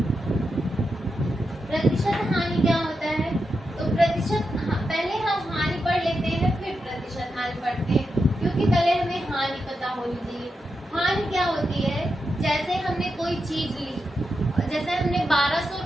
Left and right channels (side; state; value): both; normal; correlation 0.87